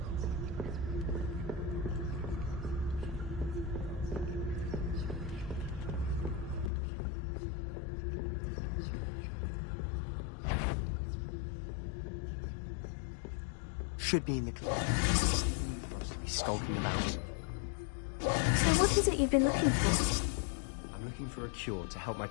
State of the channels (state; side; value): drops out; right; at 6.7 s